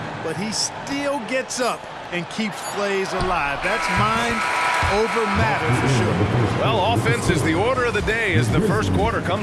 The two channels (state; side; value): identical; both; correlation 1.00